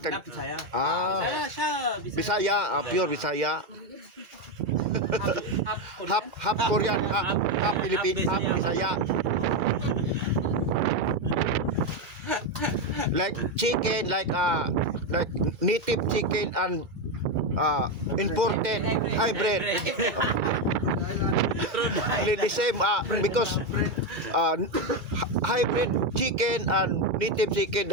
Bisaya. Ah, Siya, Bisaya, pure Bisaya. Half Korean, half Philippine, half Bisaya. Like chicken, like native chicken and imported hybrid. The same because hybrid chicken and native chicken,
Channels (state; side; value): late; left; 2.3 ms